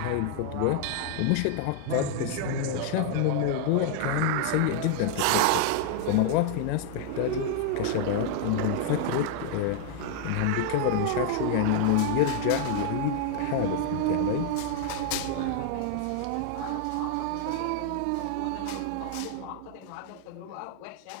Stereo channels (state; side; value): different; both; correlation 0.00